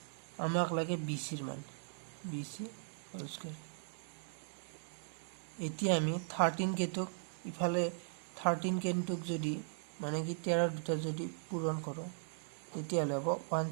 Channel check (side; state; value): left; silent; digital silence